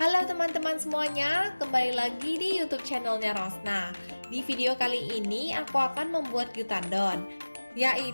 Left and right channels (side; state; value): both; inverted; correlation -1.00